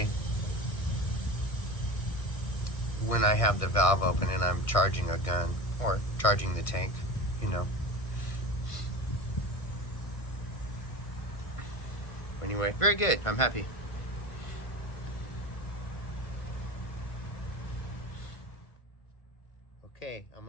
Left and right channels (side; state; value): right; late; 1.5 ms